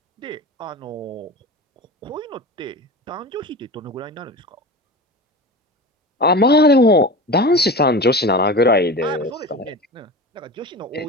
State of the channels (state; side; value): normal; both; correlation 0.30